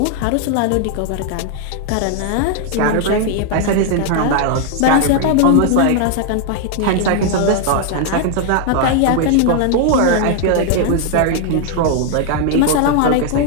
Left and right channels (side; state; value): both; different; correlation 0.00